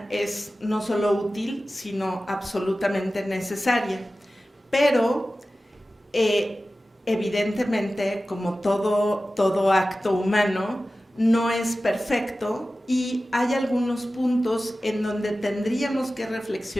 es no solo útil, sino absolutamente necesaria, pero evidentemente, como todo acto humano, no es perfecto y hay algunos puntos en donde tendríamos que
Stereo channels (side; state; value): both; normal; correlation 0.95